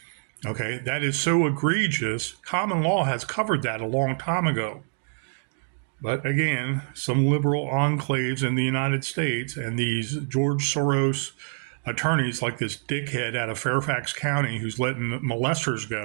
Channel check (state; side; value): silent; left; 61 dB below the other